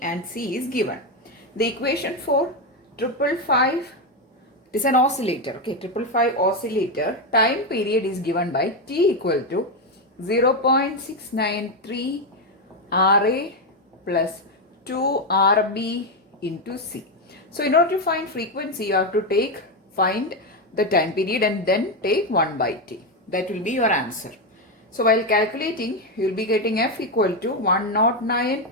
and C is given. The equation for 555, it is an oscillator. Okay, 555 oscillator time period is given by T equal to 0.693 RA plus 2 RB into C. So in order to find frequency, you have to find the time period and then take 1 by T. That will be your answer. So while calculating, you will be getting F equal to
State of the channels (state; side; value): normal; both; correlation 0.08